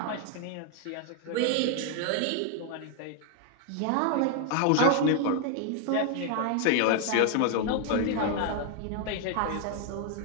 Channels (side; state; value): both; different; correlation 0.00